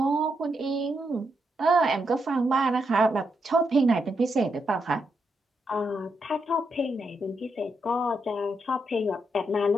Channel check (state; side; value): normal; both; correlation 0.81